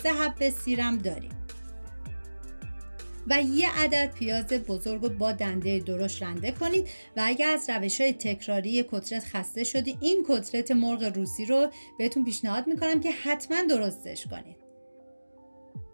3 حبه سیرم داریم و 1 عدد پیاز بزرگ رو با دنده درشت رنده کنید. و اگر از روش‌های تکراری کتلت خسته شدید، این کتلت مرغ روسی رو بهتون پیشنهاد میکنم که حتما درستش کنید.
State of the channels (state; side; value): inverted; both; correlation -1.00